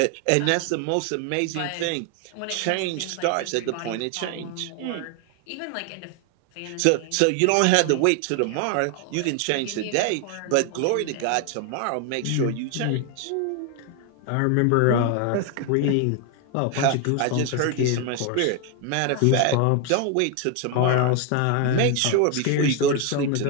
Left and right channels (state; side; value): different; both; correlation 0.01